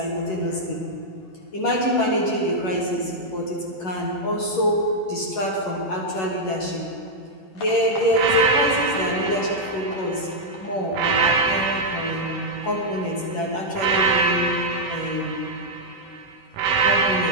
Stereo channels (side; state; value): right; late; 11 ms